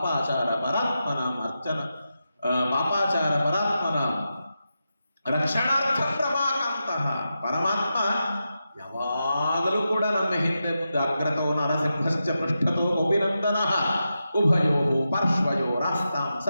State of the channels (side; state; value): both; inverted; correlation -0.89